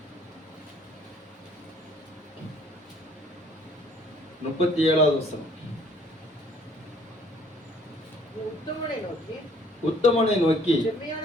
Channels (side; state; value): both; normal; correlation 0.59